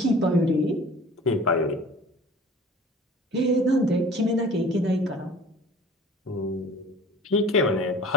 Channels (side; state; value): both; normal; correlation 0.44